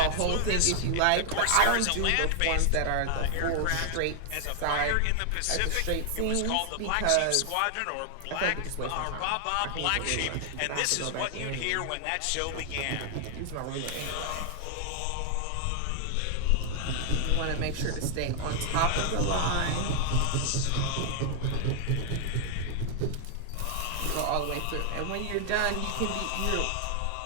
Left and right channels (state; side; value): different; both; correlation 0.00